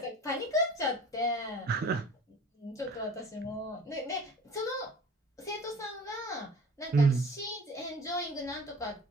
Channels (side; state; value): both; normal; correlation 0.43